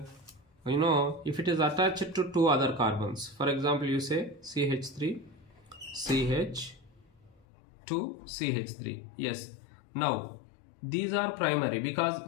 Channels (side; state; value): right; drops out; at 7.4 s